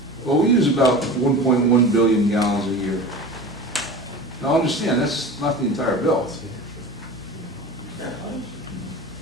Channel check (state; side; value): normal; both; correlation 0.34